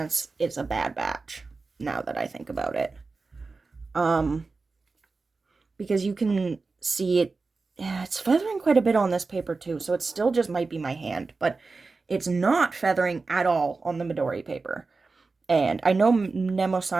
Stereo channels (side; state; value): left; quieter; 4.0 dB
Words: it's a bad batch, now that I think about it. Because you can see it, yeah, it's feathering quite a bit on this paper too, so it still just might be my hand, but it's not feathering at all on the Midori paper. And I know